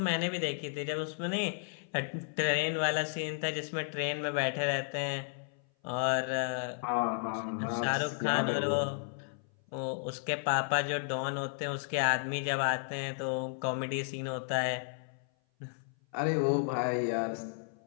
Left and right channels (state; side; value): silent; right; 56 dB below the other